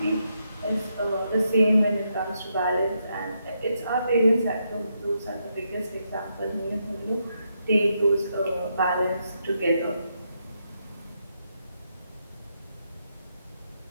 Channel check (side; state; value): both; inverted; correlation -0.80